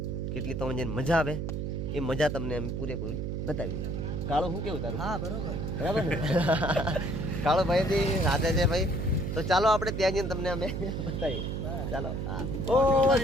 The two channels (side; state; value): right; noise; hum, 3 dB below the sound